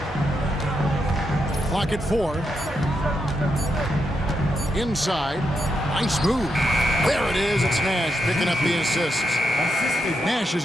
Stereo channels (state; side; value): normal; both; correlation 0.83